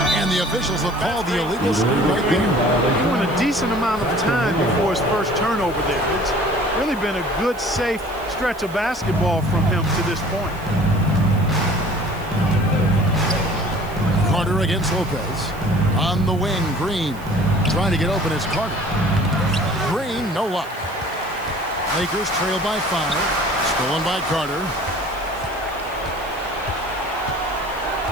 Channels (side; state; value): right; noise; hiss, 22 dB below the sound